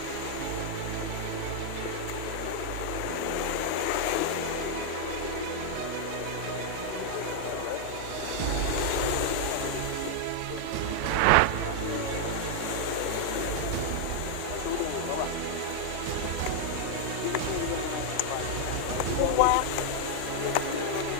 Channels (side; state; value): both; different; correlation 0.00